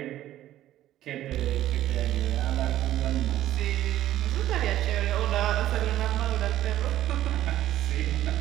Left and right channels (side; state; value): left; quieter; 13.4 dB